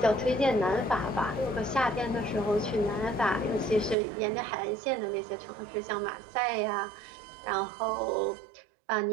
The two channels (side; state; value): left; drops out; at 4.0 s